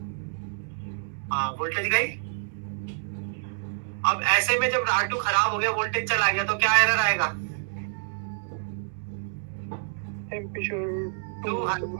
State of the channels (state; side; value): silent; left; digital silence